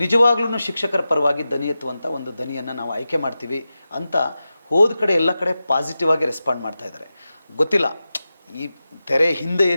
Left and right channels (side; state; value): both; inverted; correlation -0.93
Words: ನಿಜವಾಗ್ಲೂ ಶಿಕ್ಷಕರ ಪರವಾಗಿ ದನಿ ಎತ್ತುವಂಥ ಒಂದು ದನಿಯನ್ನು ನಾವು ಆಯ್ಕೆ ಮಾಡ್ತೀವಿ ಅಂತ ಹೋದ ಕಡೆ ಎಲ್ಲ ಕಡೆ ಪಾಸಿಟಿವ್ ಆಗಿ ರೆಸ್ಪಾಂಡ್ ಮಾಡ್ತಾ ಇದ್ದಾರೆ. ಗೊತ್ತಿಲ್ಲ ಈ ತೆರೆ ಹಿಂದೆ